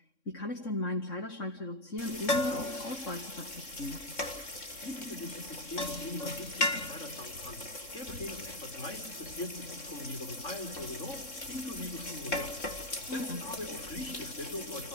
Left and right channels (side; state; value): right; late; 3.6 ms